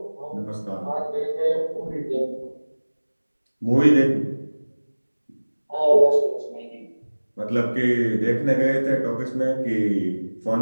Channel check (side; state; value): both; inverted; correlation -1.00